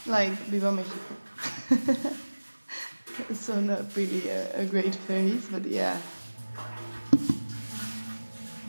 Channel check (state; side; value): inverted; both; correlation -1.00